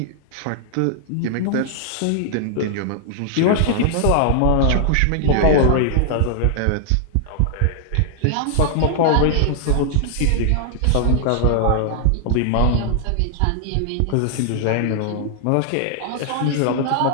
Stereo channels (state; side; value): different; both; correlation 0.00